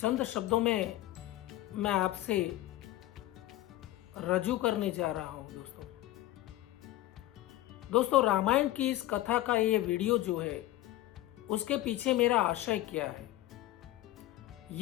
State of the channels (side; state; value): right; quieter; 15.6 dB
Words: चंद शब्दों में मैं आपसे रजू करने जा रहा हूं। दोस्तों, रामायण की इस कथा का ये वीडियो जो है उसके पीछे मेरा आशय क्या है,